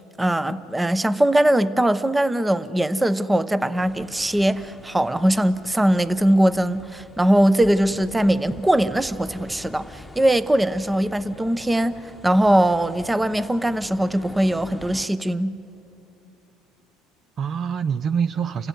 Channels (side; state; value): both; normal; correlation 0.96